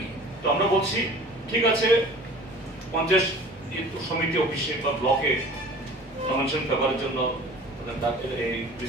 তো আমরা বলছি ঠিক আছে, পঞ্চায়েত সমিতি অফিসে বা ব্লকে নমিনেশন পেপারের জন্য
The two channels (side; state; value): both; normal; correlation 0.44